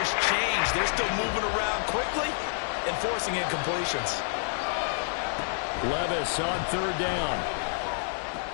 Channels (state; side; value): silent; right; 59 dB below the other